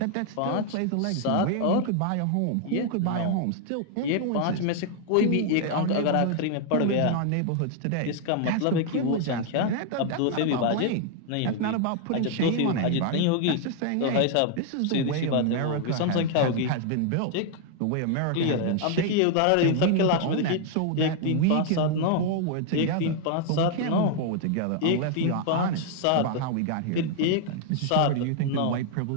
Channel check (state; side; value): different; both; correlation 0.00